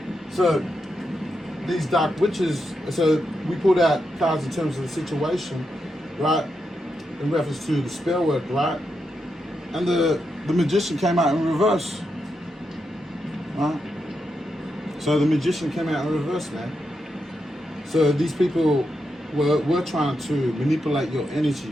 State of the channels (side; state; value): both; normal; correlation 0.85